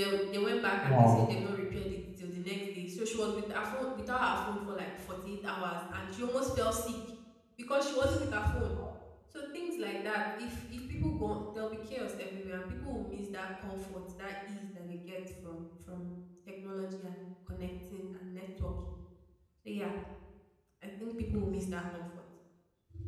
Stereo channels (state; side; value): identical; both; correlation 1.00